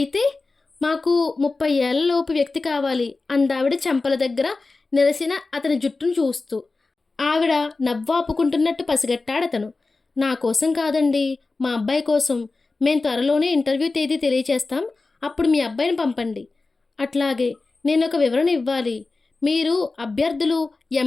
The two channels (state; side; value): quieter; right; 3.7 dB